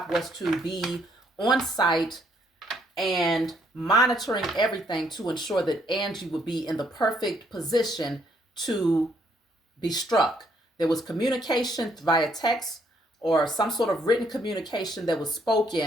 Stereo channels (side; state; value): both; normal; correlation 0.70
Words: was to be on site and monitoring everything to ensure that Angie would be in the perfect position to be struck. There was communication via text or some sort of written communication that was